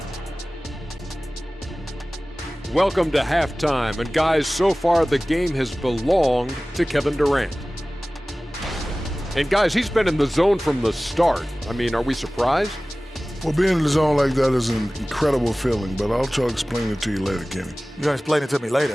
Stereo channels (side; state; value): both; normal; correlation 0.98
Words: Welcome to halftime, and guys, so far the game has belonged to Kevin Durant. And guys, he's been in the zone from the start. I mean, are we surprised? Well, being in the zone like that is an incredible feeling, but I'll try to explain it to you later, Kenny. You're gonna explain it to me